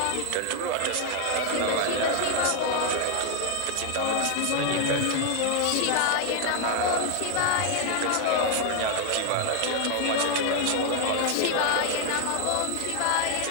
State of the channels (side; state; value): both; different; correlation 0.00